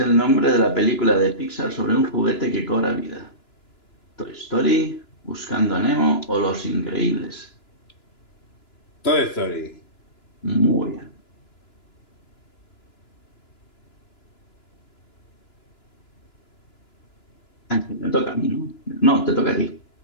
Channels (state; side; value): late; right; 2.9 ms